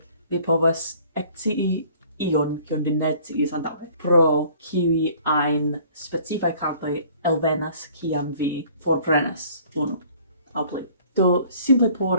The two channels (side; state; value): both; inverted; correlation -0.54